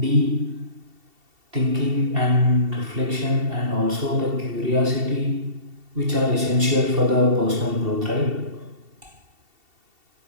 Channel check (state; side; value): late; left; 2.7 ms